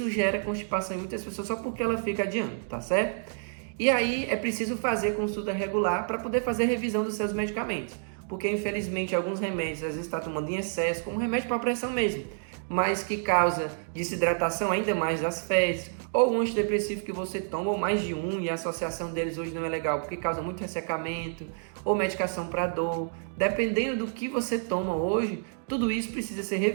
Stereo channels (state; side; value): silent; left; digital silence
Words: gera constipação em muitas pessoas só porque ela fica adiando, tá certo? E aí é preciso fazer consulta regular para poder fazer revisão dos seus medicamentos, porque infelizmente alguns remédios às vezes está tomando em excesso, como remédio para pressão mesmo, mas que causa desidratação ainda mais das fezes, ou um antidepressivo que você toma, ou mais de um, e a associação deles hoje não é legal, porque causa muito ressecamento, ou medicação para dor. Dependendo do que você toma hoje, tudo isso precisa ser